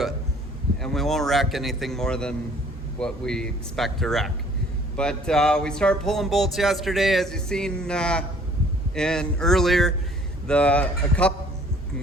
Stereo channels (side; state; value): both; normal; correlation 0.56